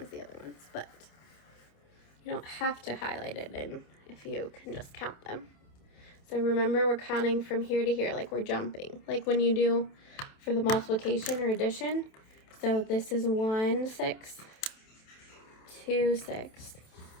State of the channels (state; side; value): late; right; 28 ms